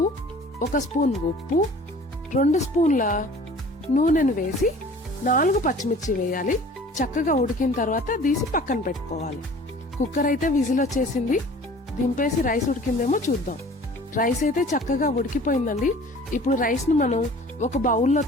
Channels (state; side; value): normal; both; correlation 0.47